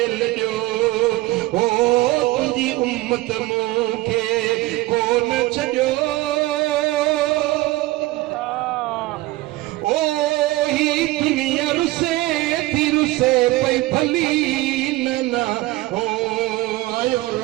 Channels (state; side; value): quieter; left; 19.0 dB